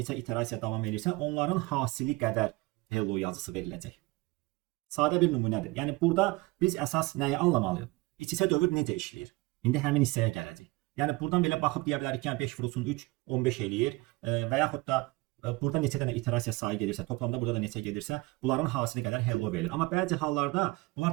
iterasiya davam edirsə, onların hasili qədər hello yazısı veriləcək. Sadə bir nümunədir. Yəni, burada biz əsas nəyi anlamalıyıq? İç-içə dövr necə işləyir? İndi həmin hissəyə gələcək. Yəni, buradan belə baxıb deyə bilərik ki, 5 vurulsun 3, 15 eləyir və yaxud da burada neçə dənə iterasiya sayı gedirsə, toplamda burada da neçə gedirsə, bunların hasili qədər hello verilir. Amma bəzi hallarda bunlar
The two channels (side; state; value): left; quieter; 22.6 dB